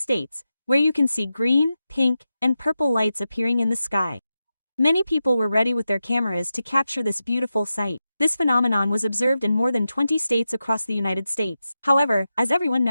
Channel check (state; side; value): inverted; both; correlation -0.91